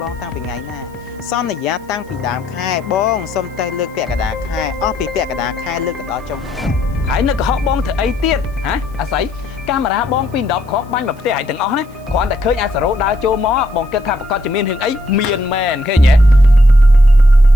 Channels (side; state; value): right; noise; hiss, 29 dB below the sound